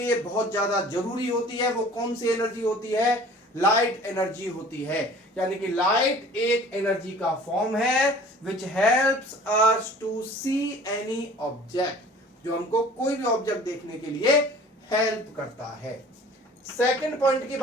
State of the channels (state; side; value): normal; both; correlation 0.47